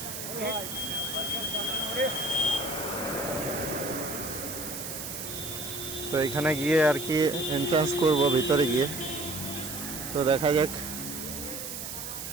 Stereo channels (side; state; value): right; noise; hiss, 7 dB below the sound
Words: তো এখানে গিয়ে আর কি এন্ট্রান্স করবো ভিতরে গিয়ে। তো দেখা যাক।